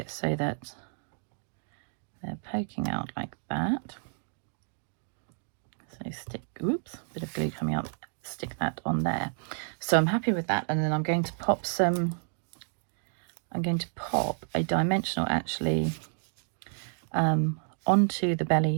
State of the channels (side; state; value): left; silent; 57 dB below the other